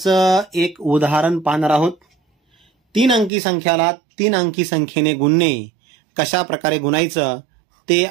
एक उदाहरण पाहणार आहोत। 3 अंकी संख्याला 3 अंकी संख्येने गुणणे कशा प्रकारे गुणायचं ते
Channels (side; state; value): left; drops out; at 3.3 s